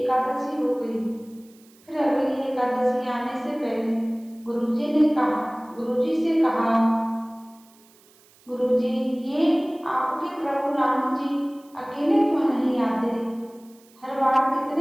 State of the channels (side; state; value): right; noise; hiss, 29 dB below the sound